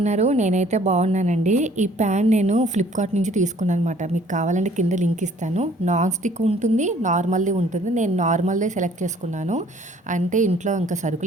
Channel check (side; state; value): both; normal; correlation 0.57